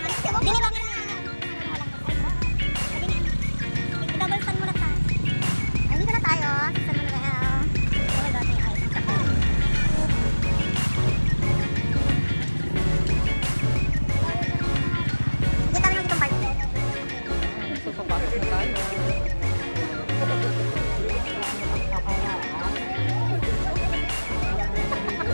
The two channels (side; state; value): both; inverted; correlation -1.00